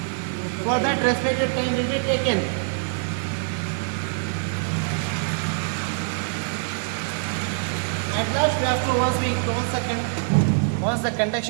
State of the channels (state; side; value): silent; left; 59 dB below the other